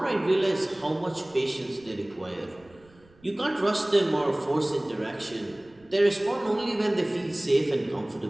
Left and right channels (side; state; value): right; noise; rumble, 29 dB below the sound